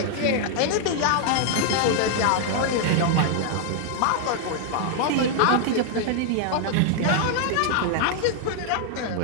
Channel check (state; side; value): different; both; correlation 0.00